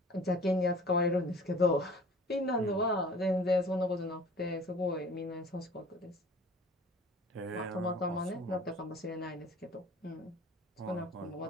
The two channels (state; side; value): normal; both; correlation 0.47